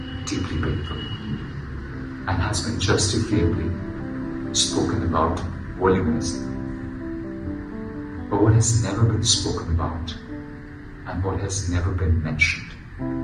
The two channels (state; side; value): identical; both; correlation 1.00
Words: deeply painful and has been justifiably spoken about voluminously. But what has never been spoken about and what has never been mentioned